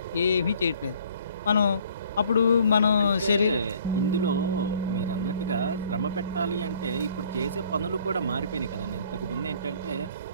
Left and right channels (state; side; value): inverted; both; correlation -0.57